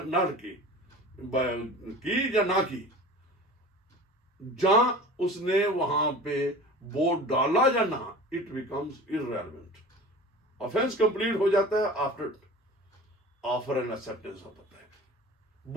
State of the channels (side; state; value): both; normal; correlation 0.39